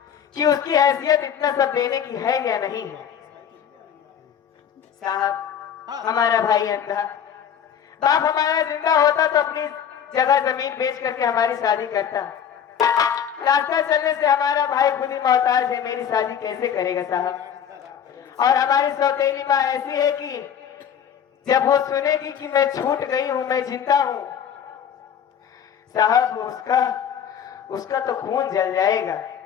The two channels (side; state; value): right; quieter; 8.5 dB